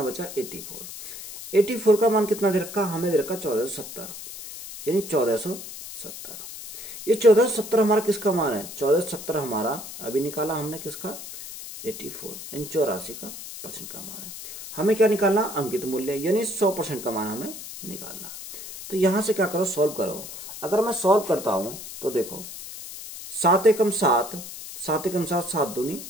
बचा, 84। 84 का मान कितना दे रखा, हमें दे रखा 1470, यानी 1470। ये 1470 हमारा किसका मान है, 1470 हमारा अभी निकाला हमने किसका, 84, यानी 84 का % का मान है। हमें क्या निकालना, अंकित मूल्य, यानी 100% का मान हमें निकालना। तो यहां से क्या करो, सॉल्व करो। अगर मैं सॉल्व करता हूं तो देखो 7 एकम 7, 7 एकम 7, 7 दूनी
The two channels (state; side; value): noise; left; hiss, 11 dB below the sound